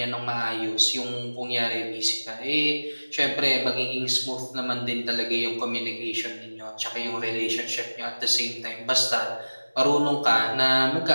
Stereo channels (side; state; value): both; inverted; correlation -1.00